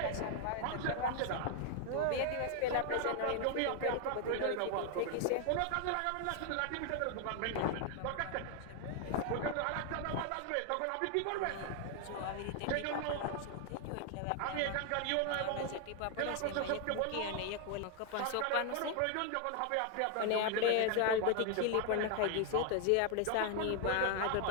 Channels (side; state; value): both; different; correlation 0.00